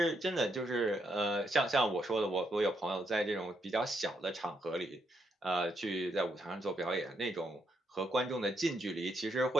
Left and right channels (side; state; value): both; normal; correlation 0.78